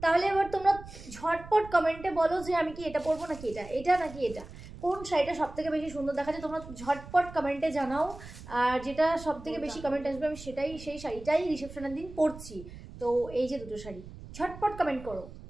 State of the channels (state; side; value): noise; right; rumble, 15 dB below the sound